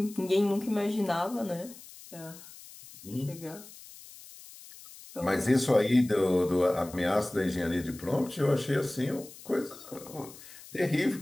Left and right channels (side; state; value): left; noise; hiss, 18 dB below the sound